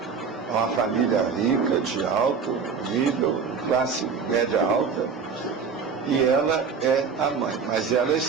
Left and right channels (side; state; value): left; quieter; 5.8 dB